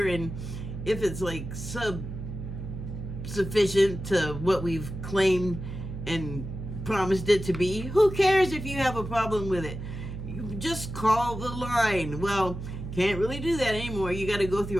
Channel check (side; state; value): right; noise; hum, 8 dB below the sound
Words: and if it's like sufficient to what we've claimed and promised it to be, who cares if you have a problem with it? You just call the line. Well, can't really do that anymore. You got to go